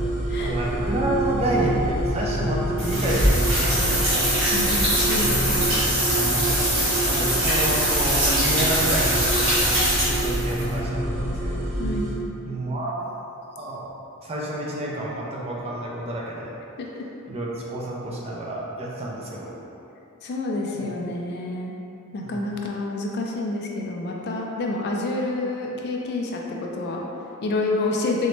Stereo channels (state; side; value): normal; both; correlation 0.35